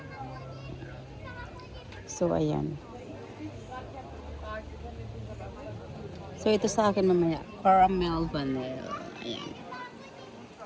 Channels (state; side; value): identical; both; correlation 1.00